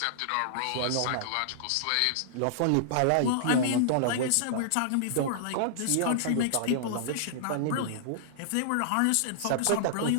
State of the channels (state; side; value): different; both; correlation -0.02